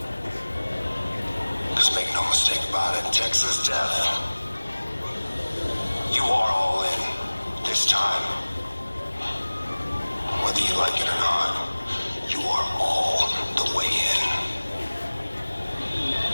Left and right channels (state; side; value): inverted; both; correlation -1.00